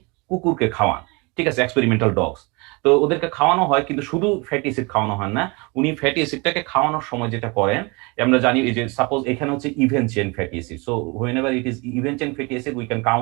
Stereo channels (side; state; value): left; quieter; 27.9 dB